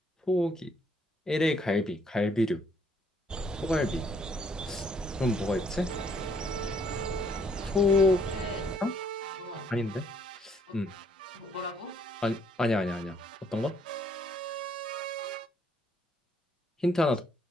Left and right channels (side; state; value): both; normal; correlation 0.67